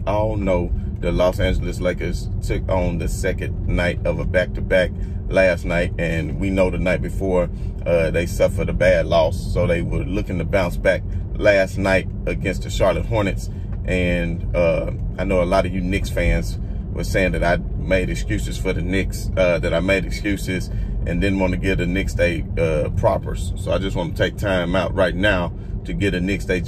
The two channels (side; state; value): both; identical; correlation 1.00